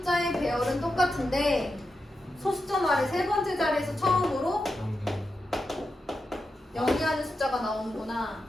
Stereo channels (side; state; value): both; normal; correlation 0.88